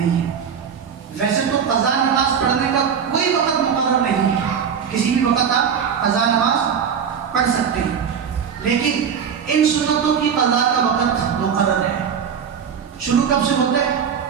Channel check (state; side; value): quieter; left; 7.3 dB